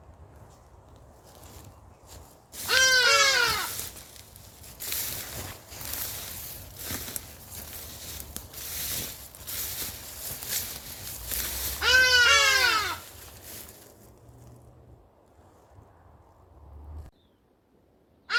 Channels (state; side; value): identical; both; correlation 1.00